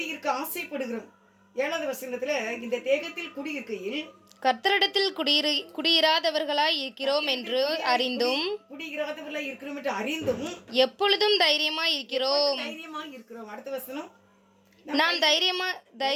ஆசைப்படுகிறோம். 7வது வசனத்துல இந்த தேகத்தில் குடியிருக்கையில் கர்த்தரிடத்தில் குடியிராதவர்களாய் இருக்கிறோம் என்று அறிந்தும் எப்பொழுதும் தைரியமாய் இருக்கிறோம். அடுத்த வசனம், நாம்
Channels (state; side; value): identical; both; correlation 1.00